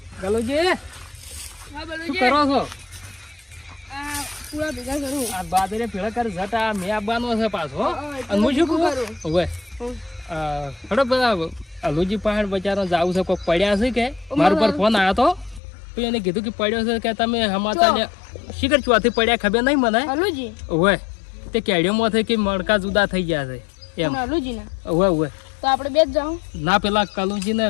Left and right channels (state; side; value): drops out; right; at 15.6 s